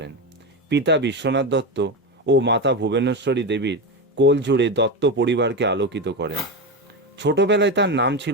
পিতা বিশ্বনাথ দত্ত ও মাতা ভুবনেশ্বরী দেবীর কোল জুড়ে দত্ত পরিবারকে আলোকিত করেন। ছোটবেলায় তার নাম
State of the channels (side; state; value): both; normal; correlation 0.17